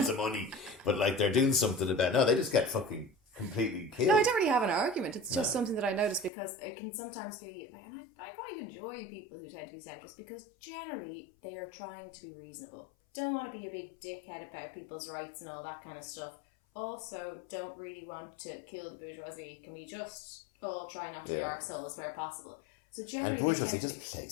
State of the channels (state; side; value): drops out; right; at 6.3 s